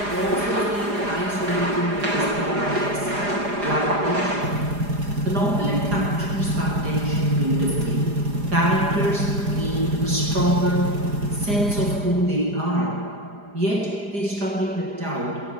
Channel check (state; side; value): late; left; 4.9 ms